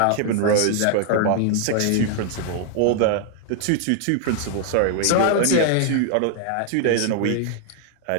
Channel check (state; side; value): different; both; correlation 0.00